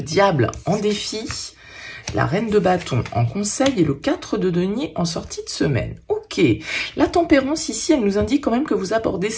en défi, la reine de bâton en conseil et le 4 de denier en sortie de semaine. Ok, la tempérance ici, elle nous indique quand même que vous abordez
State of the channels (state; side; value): identical; both; correlation 1.00